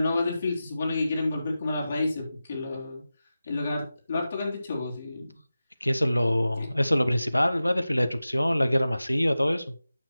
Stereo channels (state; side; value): inverted; both; correlation -0.94